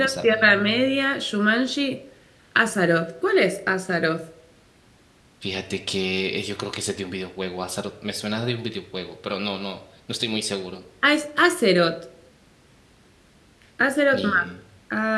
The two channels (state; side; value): identical; both; correlation 1.00